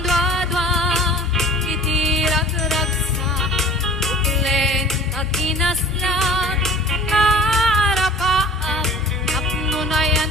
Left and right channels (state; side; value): normal; both; correlation 0.45